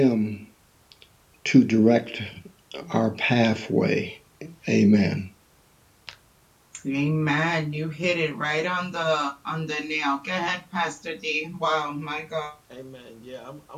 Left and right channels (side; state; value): both; identical; correlation 1.00